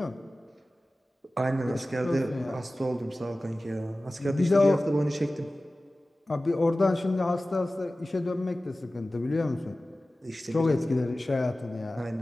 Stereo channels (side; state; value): both; normal; correlation 0.96